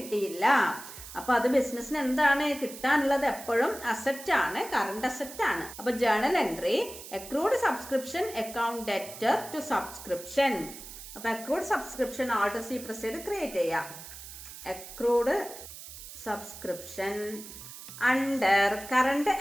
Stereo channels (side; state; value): right; noise; hiss, 13 dB below the sound